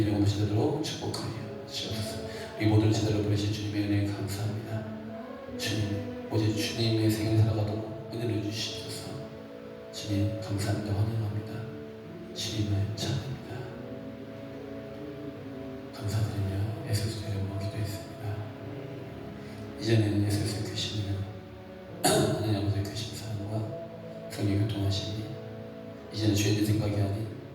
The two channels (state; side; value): identical; both; correlation 1.00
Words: 모습으로 축복하여 주옵소서. 우리 모두를 제대로 부르신 주님의 은혜에 감사합니다. 주님 오직 주님의 생을 살아가도록 은혜를 주시옵소서. 주님 감사합니다. 환영합니다. 주님을 찬양합니다. 감사드리며 예수의 이름으로 기도했습니다. 이제는 예수의 크신 하나님 아버지의 크신 사랑과 성령의 교통하심이 이제는 죄인의 생각이 아닌